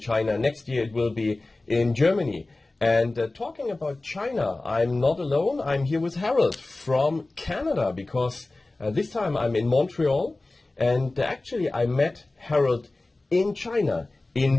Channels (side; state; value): right; quieter; 3.0 dB